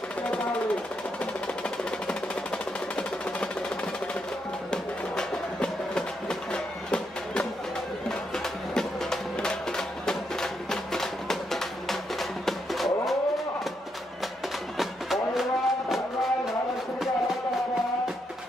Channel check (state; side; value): normal; both; correlation 0.80